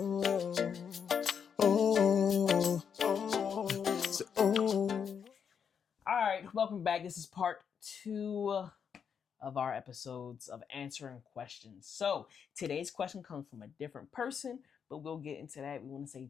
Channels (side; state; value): right; quieter; 7.2 dB